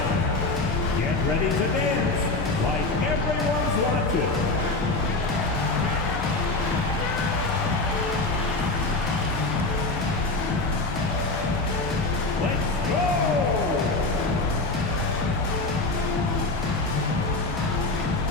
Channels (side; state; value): right; quieter; 3.2 dB